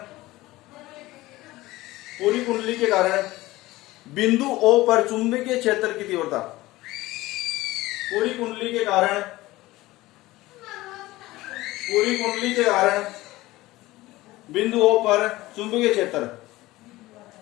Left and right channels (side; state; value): right; quieter; 18.4 dB